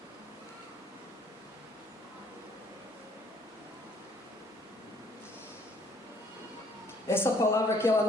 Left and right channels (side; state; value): both; normal; correlation 0.62